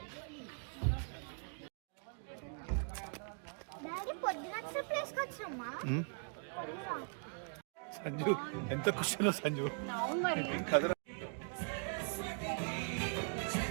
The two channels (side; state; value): left; silent; 51 dB below the other